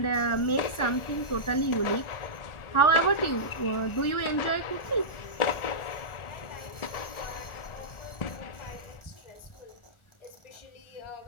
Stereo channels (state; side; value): late; right; 1.4 ms